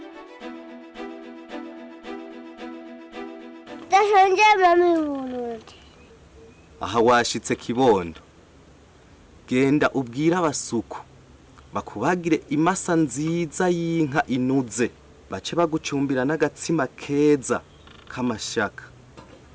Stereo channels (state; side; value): identical; both; correlation 1.00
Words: Ndashonje mami y'Uburundi. Aha washitse kibondo, genda ubwira abasuku bakubagire imasa nziza y'inka inuze, bace bagucumbira n'agatsima keza kamashaka